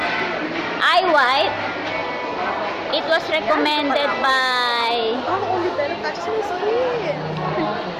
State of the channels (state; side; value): identical; both; correlation 1.00